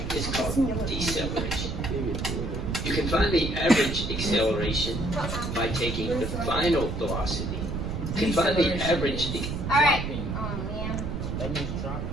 is called deceleration. You can find the average acceleration by taking the final velocity. You can find the average. All right. Oh, man.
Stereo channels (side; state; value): right; noise; rumble, 3 dB below the sound